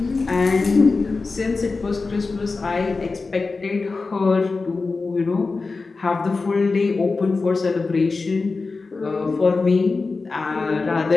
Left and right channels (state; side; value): quieter; right; 4.0 dB